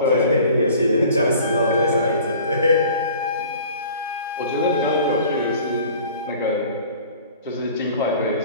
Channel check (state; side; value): inverted; both; correlation -0.47